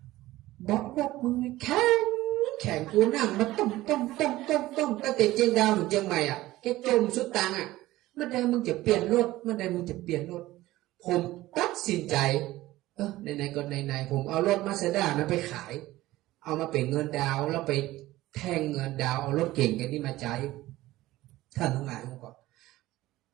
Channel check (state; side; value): quieter; left; 16.9 dB